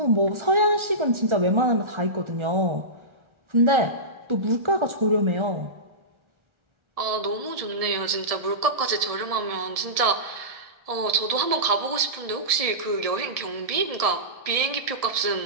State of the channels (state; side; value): late; left; 1.7 ms